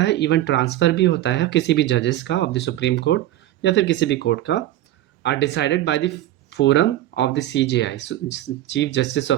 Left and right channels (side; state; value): left; quieter; 14.2 dB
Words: इवन ट्रांसफ़र भी होता है किसी भी जजेस का ऑफ द सुप्रीम कोर्ट या फिर किसी भी कोर्ट का, are decided by the forum of the CJI, chief justice